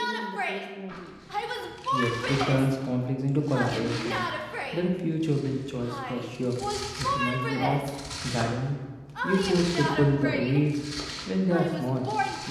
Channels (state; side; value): identical; both; correlation 1.00